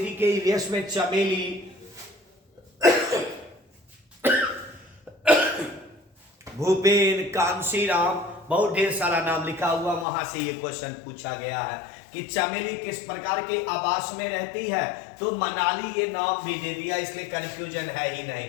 के ईवीएस में चमेली भूपेन, कांशीराम, बहुत ढेर सारा नाम लिखा हुआ, वहां से ये क्वेश्चन पूछा गया है कि चमेली किस प्रकार के आवास में रहती है, तो मनाली ये नाम भी दे दिया, इसलिए कंफ्यूजन है ही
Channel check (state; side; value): drops out; right; at 10.1 s